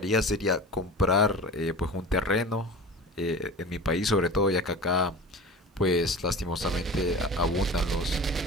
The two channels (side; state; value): both; normal; correlation 0.35